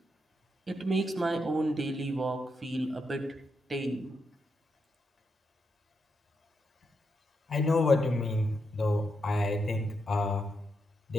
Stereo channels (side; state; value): both; normal; correlation 0.83